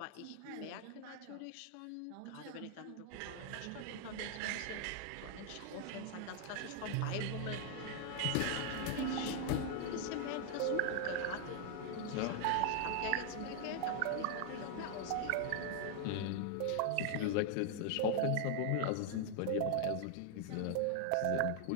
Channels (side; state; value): both; different; correlation 0.00